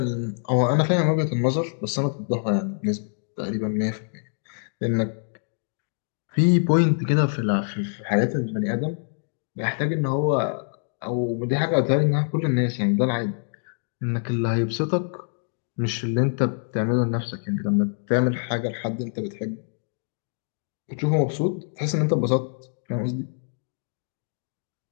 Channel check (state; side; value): silent; right; digital silence